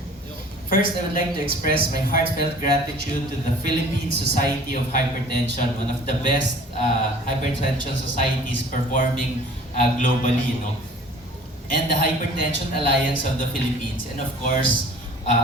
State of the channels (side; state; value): both; normal; correlation 0.48